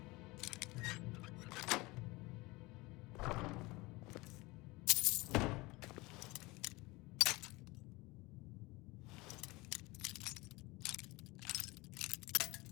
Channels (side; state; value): right; quieter; 22.6 dB